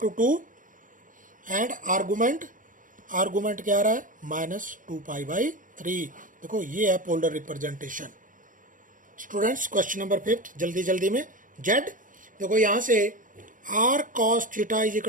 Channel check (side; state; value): left; late; 0.39 ms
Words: 2 and argument क्या आ रहा है, माइनस 2 पाई बाई 3। देखो ये है polar representation. Students question number 5 जल्दी में, जेड, देखो यहां से r cos theta is